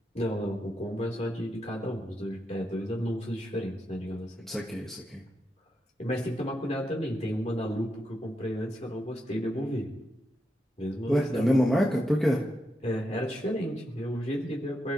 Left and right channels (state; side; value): normal; both; correlation 0.85